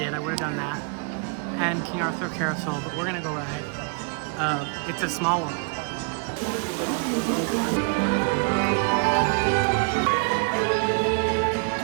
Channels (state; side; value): quieter; left; 36.6 dB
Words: I would have done that. And King Arthur Carousel. But we're gonna go ride It's a Small World.